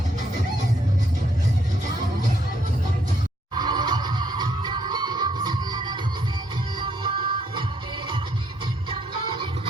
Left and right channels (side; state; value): both; normal; correlation 0.71